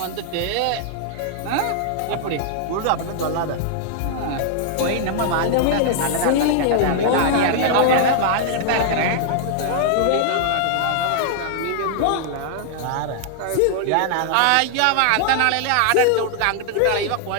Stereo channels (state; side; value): different; both; correlation -0.01